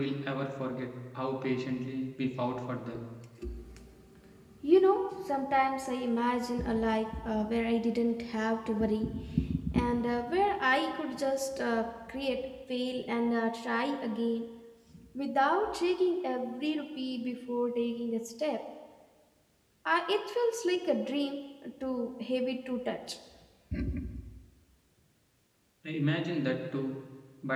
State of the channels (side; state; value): both; identical; correlation 1.00